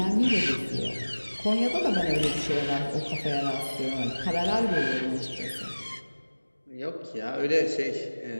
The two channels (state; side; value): inverted; both; correlation -1.00